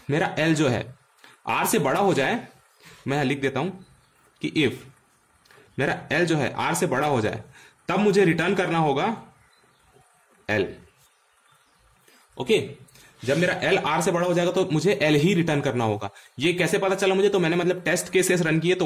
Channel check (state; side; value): identical; both; correlation 1.00